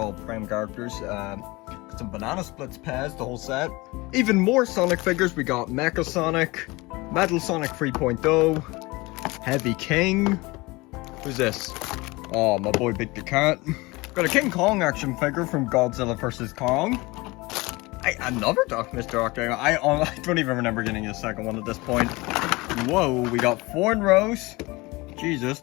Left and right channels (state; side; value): quieter; right; 23.0 dB